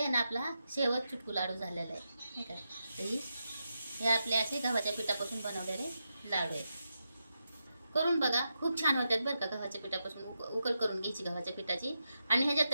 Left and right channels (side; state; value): both; inverted; correlation -0.87